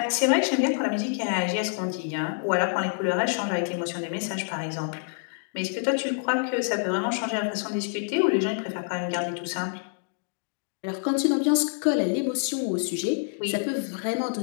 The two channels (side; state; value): right; silent; digital silence